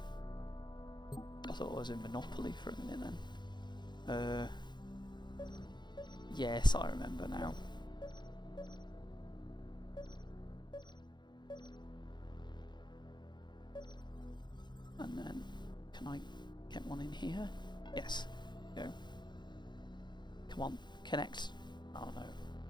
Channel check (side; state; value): right; late; 0.21 ms